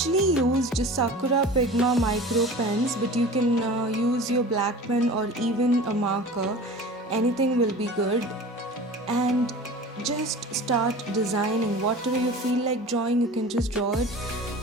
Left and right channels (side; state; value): both; normal; correlation 0.38